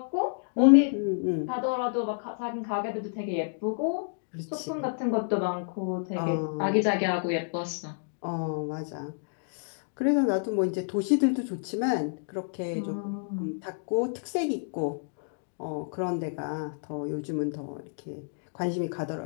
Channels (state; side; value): silent; right; digital silence